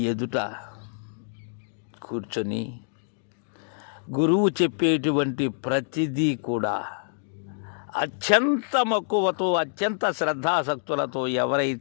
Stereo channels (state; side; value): silent; right; digital silence